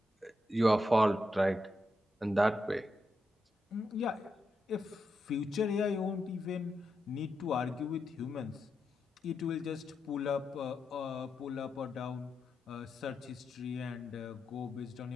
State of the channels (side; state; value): both; normal; correlation 0.85